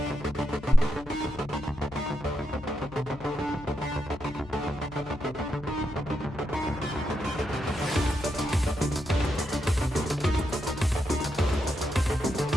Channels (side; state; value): left; noise; hum, 17 dB below the sound